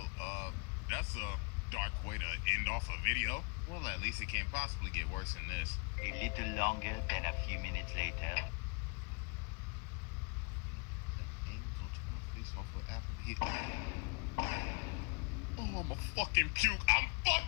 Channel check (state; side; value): quieter; right; 33.1 dB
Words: that's a dark way to end off a video. Well, at least it can't possibly get worse than this. A little longer than a few minutes later. Oh, I'm a fucking puke. I'm